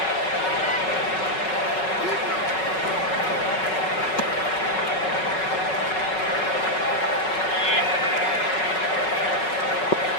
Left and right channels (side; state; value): right; late; 5.4 ms